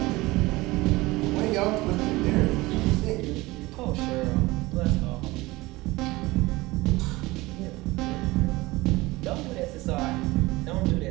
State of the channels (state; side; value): quieter; left; 20.6 dB